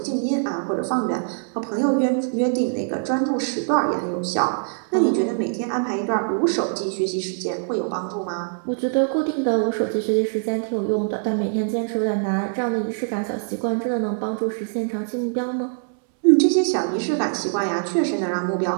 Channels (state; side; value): silent; left; 63 dB below the other